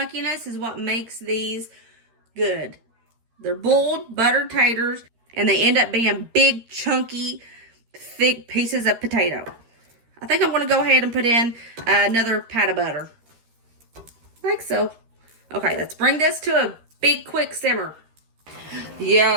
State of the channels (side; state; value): left; late; 13 ms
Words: is what makes these good. They're boiled, buttered taters, and they end up being big, chunky, thick pieces of potato. I think I'm going to go ahead and put in another pat of butter. Like so. Okay, let's bring this to a big, quick simmer.